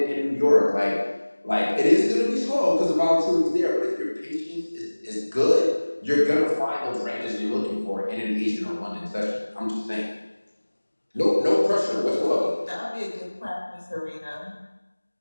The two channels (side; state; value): both; inverted; correlation -1.00